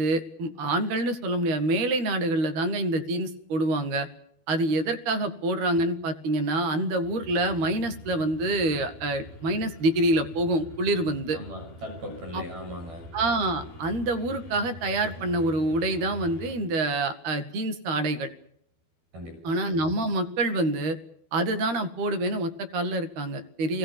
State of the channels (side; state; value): left; late; 12 ms